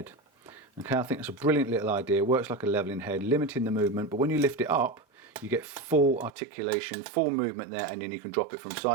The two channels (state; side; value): drops out; left; at 6.3 s